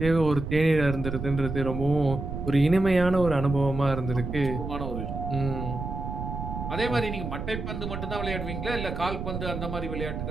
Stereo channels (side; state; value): right; noise; rumble, 6 dB below the sound